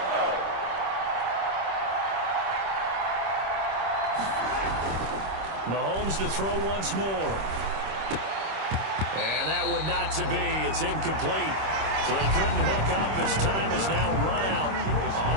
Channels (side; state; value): left; late; 26 ms